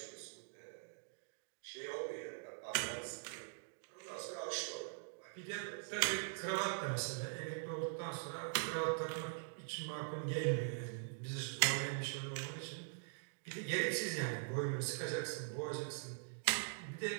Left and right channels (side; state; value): left; silent; digital silence